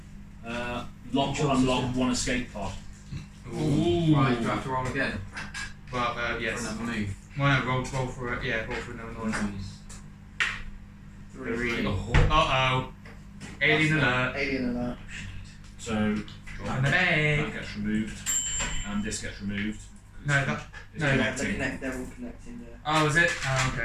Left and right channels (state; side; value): identical; both; correlation 1.00